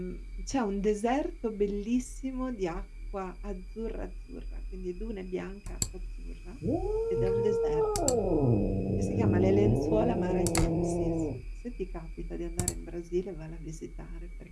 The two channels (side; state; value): both; identical; correlation 1.00